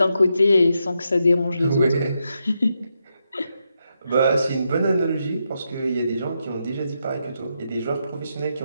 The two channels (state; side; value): inverted; both; correlation -0.83